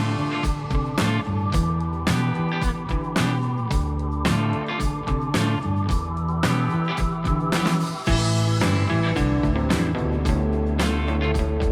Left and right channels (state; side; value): identical; both; correlation 1.00